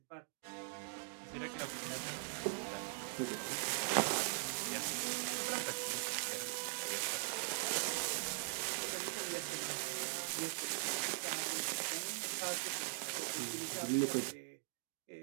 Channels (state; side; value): silent; left; digital silence